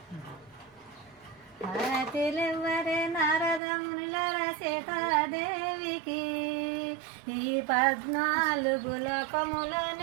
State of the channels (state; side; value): drops out; left; at 3.6 s